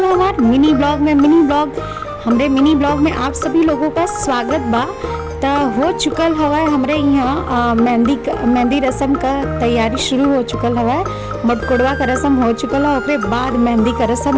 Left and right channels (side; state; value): both; identical; correlation 1.00